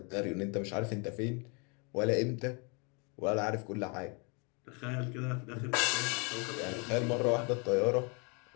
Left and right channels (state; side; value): quieter; right; 33.5 dB